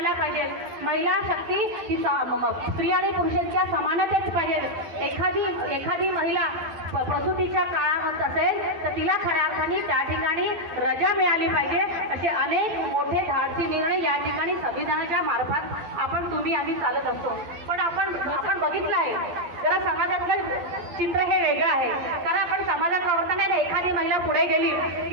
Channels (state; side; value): late; left; 12 ms